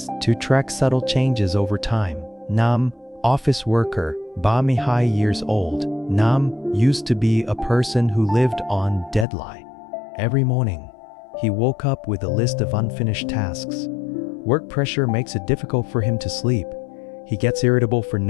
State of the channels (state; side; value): drops out; right; at 9.2 s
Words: to track subtle changes over time. Office worker, Bami High years old. Used to be a person who lived on deadline. Every morning, he woke up with a list of unfinished tasks. Work pressure makes it difficult for him to sleep. He gets irritable for